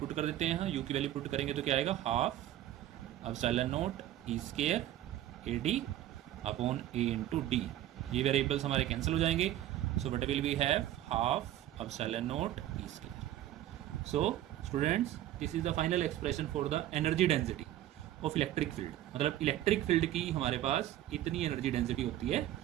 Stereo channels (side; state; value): left; quieter; 13.2 dB